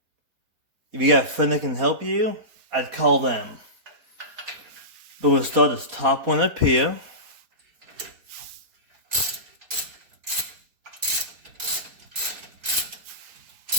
If you got a friend that can help you, I'd call them. But we'll start this top one up here.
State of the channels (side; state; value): left; late; 4.5 ms